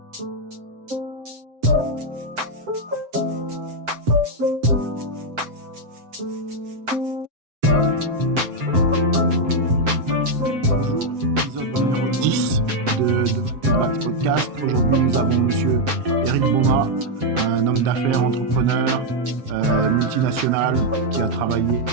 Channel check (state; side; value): late; left; 7.7 ms